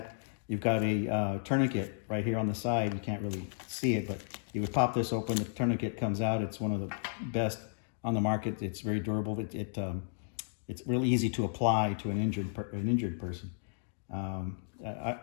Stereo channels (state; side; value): silent; right; digital silence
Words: you've got a tourniquet right here on the side. You can't really see it, but you would pop this open, the tourniquet comes out. It's one of the best on the market. It's very durable. It's really easy to apply to an injured person.